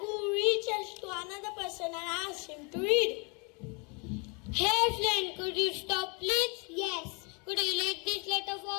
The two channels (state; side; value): quieter; right; 33.0 dB